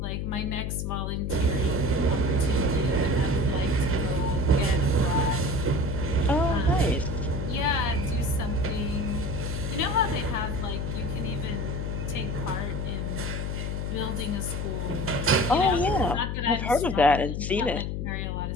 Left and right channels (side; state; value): left; noise; hum, 2 dB below the sound